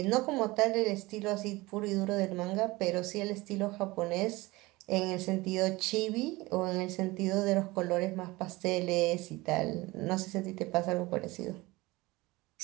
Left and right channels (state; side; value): quieter; left; 21.4 dB